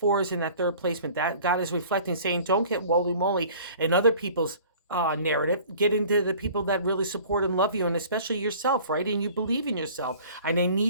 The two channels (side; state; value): both; inverted; correlation -0.48